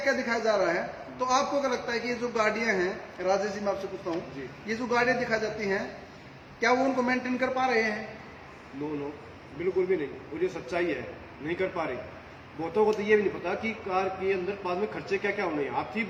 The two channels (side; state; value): both; identical; correlation 1.00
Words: दिखाया जा रहा है। तो आपको क्या लगता है कि ये जो गाड़ियां हैं, राजेश जी मैं आपसे पूछता हूँ, ये जो गाड़ियां दिखाई जाती हैं, क्या वो उनको मेंटेन कर पा रहे हैं? नो, बिल्कुल भी नहीं। और ये सच्चाई है, नहीं कर पा रहे। बहुतों को तो ये भी नहीं पता कि कार के अंदर बाद में खर्चे क्या क्या होने हैं। हाथी